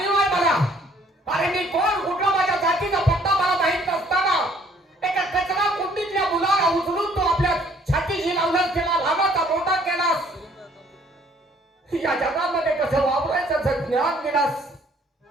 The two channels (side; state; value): both; normal; correlation 0.61